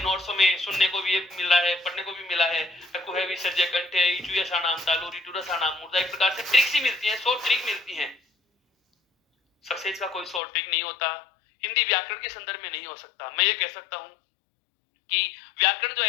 में सुनने को भी मिल रहा है, पढ़ने को भी मिला है, कुहे विसर्जय कंठे इचुयसानाम तालु रिटुरसानाम मूर्धा। एक प्रकार से ट्रिक्स ही मिलती हैं, 100 ट्रिक मिलती हैं। सक्सेस का कोई 100 ट्रिक नहीं होता, हिंदी व्याकरण के संदर्भ में नहीं हो सकता। मैं ये कह सकता हूं कि व्याकरण जो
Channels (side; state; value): right; drops out; at 10.4 s